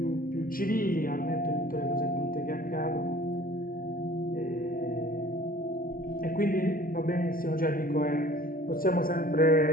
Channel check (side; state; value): right; late; 0.42 ms